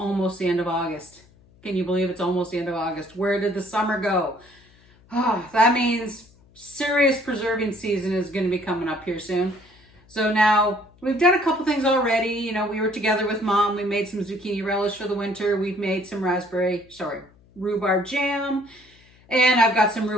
the end of August. Can you believe it's almost the end of August? Where did the summer go? Oh, that means serious preserving season is going to be coming up here soon. So now we've done a couple things already. You know, we were together with Mom. We made some zucchini relish for the winter. We've made some rhubarb jam. And I've got some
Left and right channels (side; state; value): left; noise; hum, 29 dB below the sound